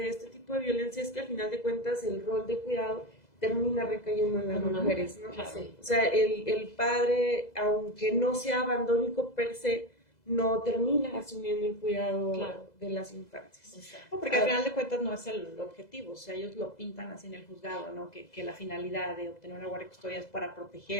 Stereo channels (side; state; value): right; late; 2.0 ms